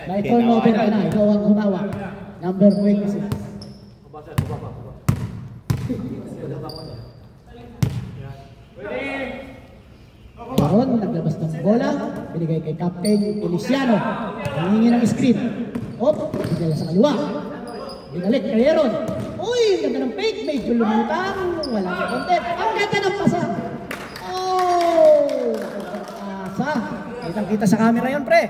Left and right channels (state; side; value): identical; both; correlation 1.00